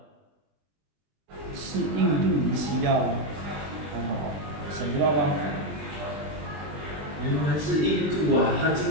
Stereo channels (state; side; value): late; left; 20 ms